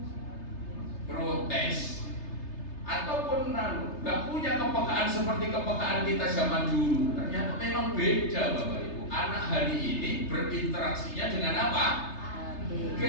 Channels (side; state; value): right; late; 3.3 ms